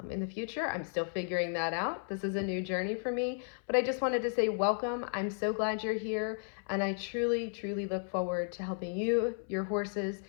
in the future. I'm still figuring that out. This is a new journey for me, but I just wanted to say welcome. I'm so glad you're here, and I truly, truly look forward to helping you, your horses,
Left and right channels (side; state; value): right; silent; 55 dB below the other